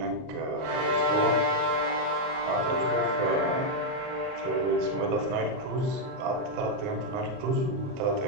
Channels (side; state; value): left; late; 38 ms